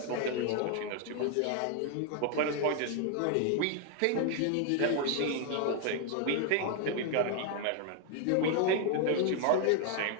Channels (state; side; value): different; both; correlation 0.01